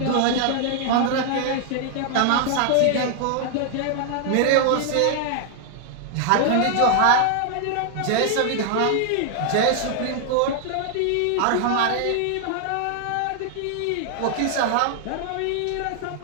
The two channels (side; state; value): both; different; correlation 0.00